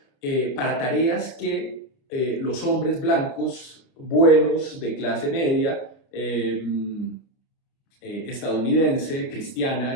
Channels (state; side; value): late; right; 29 ms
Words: para tareas que los hombres blancos buenos de clase media, estadounidense, cristiana,